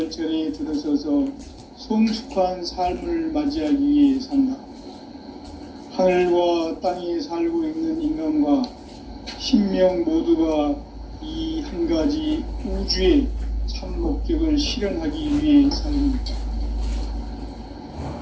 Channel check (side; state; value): both; identical; correlation 1.00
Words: 들어서서 성숙한 삶을 맞이하기 위해 산다. 하늘과 땅에 살고 있는 인간과 신명 모두가 이 한 가지 우주의 참 목적을 실현하기 위해 살고 있다.